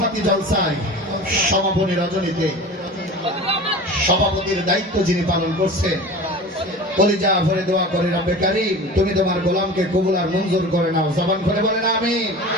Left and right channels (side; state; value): both; normal; correlation 0.36